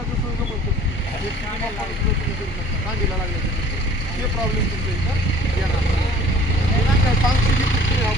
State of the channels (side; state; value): both; normal; correlation 0.51